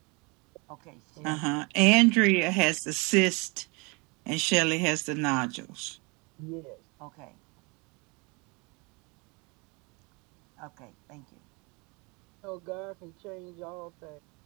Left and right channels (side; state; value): left; quieter; 28.9 dB